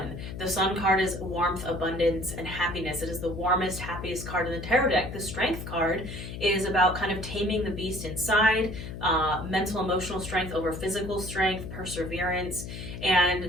The sun card is warmth, abundance, and happiness. It is the warmest, happiest card in the tarot deck. The strength card is about kind of taming the beast inside, mental, emotional strength over physical strength, perseverance. And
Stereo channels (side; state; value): left; noise; hum, 9 dB below the sound